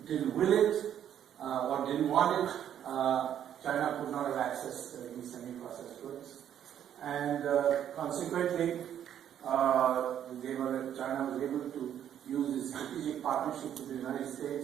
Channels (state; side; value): quieter; left; 10.0 dB